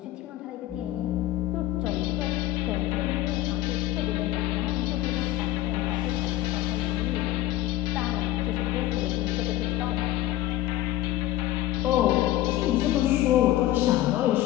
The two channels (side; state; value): right; quieter; 14.5 dB